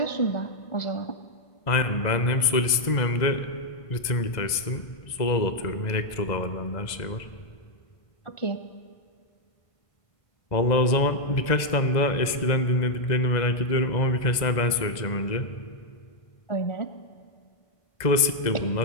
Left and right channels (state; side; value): late; right; 2.0 ms